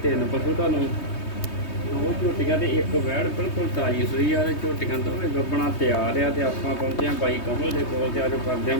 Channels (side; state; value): right; late; 3.2 ms